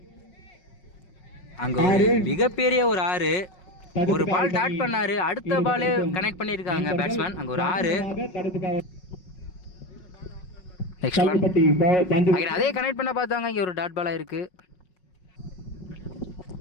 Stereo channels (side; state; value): right; late; 5.5 ms